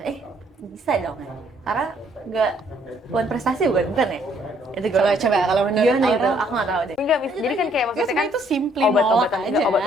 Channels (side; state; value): both; normal; correlation 0.66